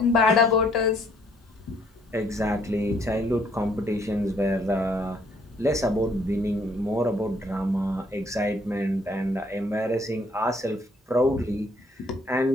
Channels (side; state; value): both; normal; correlation 0.65